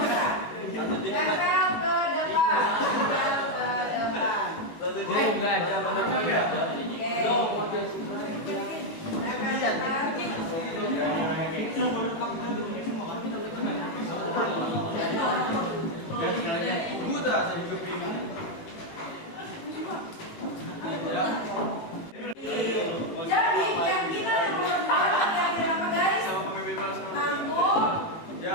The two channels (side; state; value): right; late; 18 ms